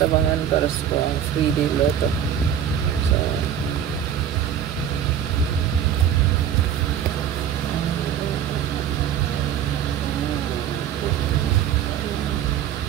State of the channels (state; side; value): quieter; left; 9.5 dB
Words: abangan para sa 3-day lotto. So,